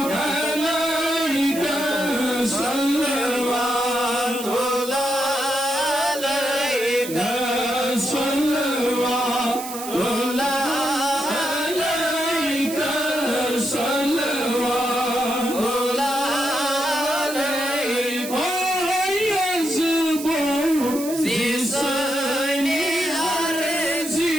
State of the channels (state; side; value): noise; right; hiss, 10 dB below the sound